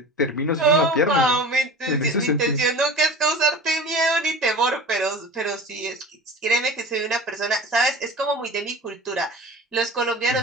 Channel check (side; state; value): both; normal; correlation 0.36